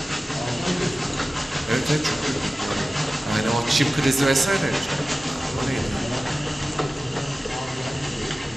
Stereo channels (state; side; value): normal; both; correlation 0.96